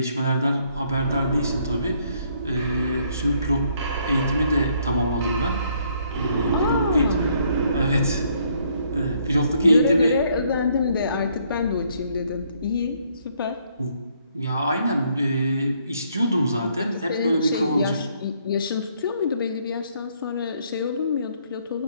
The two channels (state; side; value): inverted; both; correlation -0.68